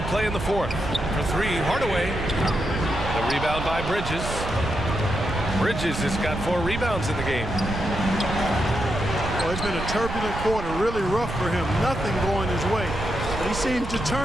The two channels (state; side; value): noise; right; rumble, 6 dB below the sound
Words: play in the fourth. For three, Hardaway. The rebound by Bridges. Bridges has got 4 rebounds in the game. Well, it's been a turbulent quarter, really rough for him. Nothing going his way. But he seems